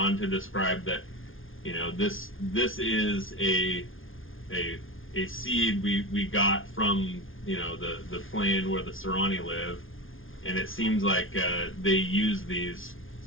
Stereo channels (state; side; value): late; right; 0.59 ms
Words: to describe that this is a seed we got from the plane where the Serani live, and it seems like they use these